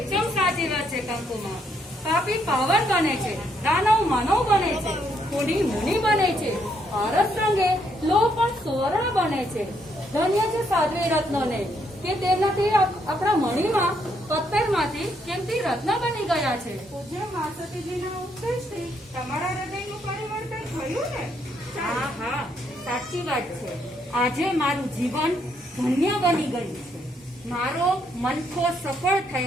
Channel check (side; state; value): both; normal; correlation 0.73